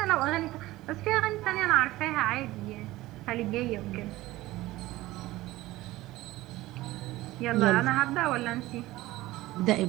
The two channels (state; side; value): quieter; left; 17.7 dB